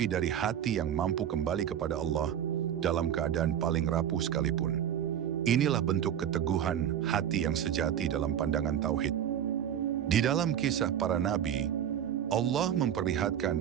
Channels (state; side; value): quieter; left; 9.8 dB